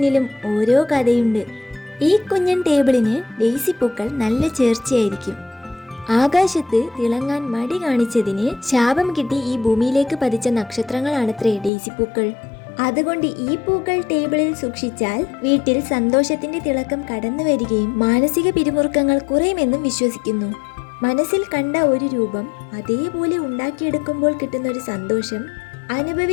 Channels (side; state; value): right; drops out; at 11.7 s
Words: ഓരോ കഥയുണ്ട്. ഈ കുഞ്ഞൻ ടേബിളിന് ഡെയ്സി പൂക്കൾ നല്ല ചേർച്ചയായിരിക്കും. ആകാശത്ത് തിളങ്ങാൻ മടി കാണിച്ചതിന് ശാപം കിട്ടി ഈ ഭൂമിയിലേക്ക് പതിച്ച നക്ഷത്രങ്ങളാണത്രേ ഡെയ്സി പൂക്കൾ. അതുകൊണ്ട് ഈ പൂക്കൾ ടേബിളിൽ സൂക്ഷിച്ചാൽ വീട്ടിൽ സന്തോഷത്തിന്റെ തിളക്കം കടന്നു വരികയും മാനസിക പിരിമുറുക്കങ്ങൾ കുറയുമെന്നും വിശ്വസിക്കുന്നു. മനസ്സിൽ കണ്ട ഒരു രൂപം അതേപോലെ ഉണ്ടാക്കിയെടുക്കുമ്പോൾ കിട്ടുന്നൊരു സന്തോഷം